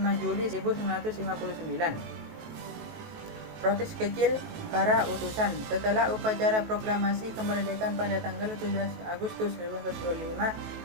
Juli 1959. Protes kecil para utusan. Setelah upacara proklamasi kemerdekaan pada tanggal 17 Agustus 1945,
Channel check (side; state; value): left; late; 19 ms